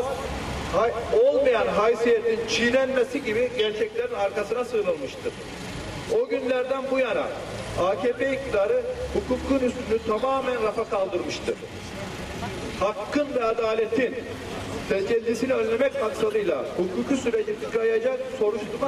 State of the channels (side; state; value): both; identical; correlation 1.00